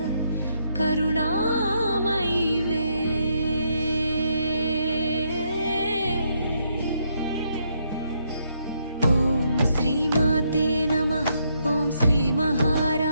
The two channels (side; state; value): both; inverted; correlation -0.76